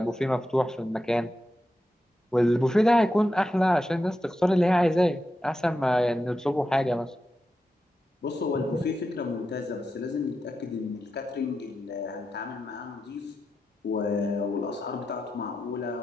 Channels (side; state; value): both; normal; correlation 0.88